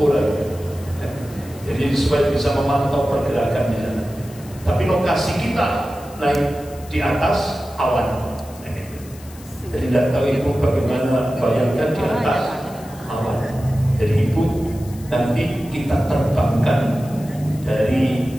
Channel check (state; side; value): noise; left; hiss, 21 dB below the sound